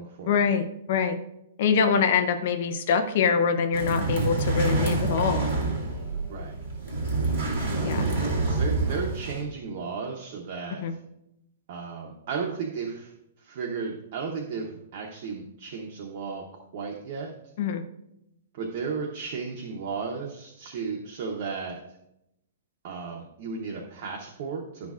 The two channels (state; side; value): inverted; both; correlation -0.42